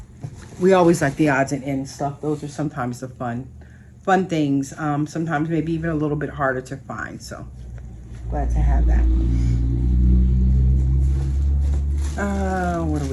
We always like the odds and ends stuff. Those are sometimes the fun things. Sometimes maybe even a little bit harder to find. So glad to have that. What do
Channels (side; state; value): both; identical; correlation 1.00